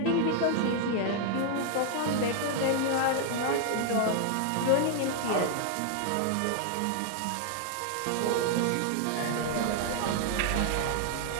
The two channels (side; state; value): both; different; correlation 0.00